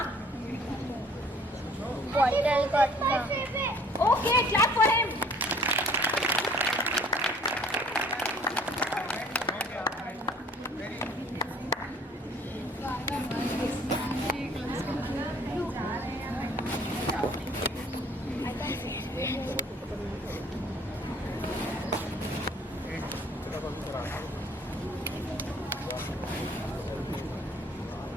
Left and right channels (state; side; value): normal; both; correlation 0.55